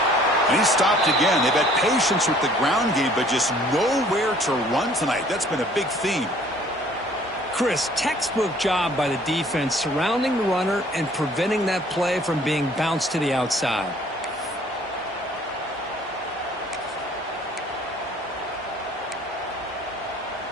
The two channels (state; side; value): normal; both; correlation 0.56